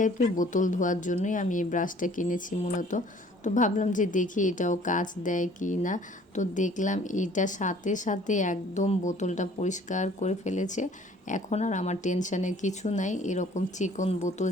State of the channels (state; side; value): normal; both; correlation 0.54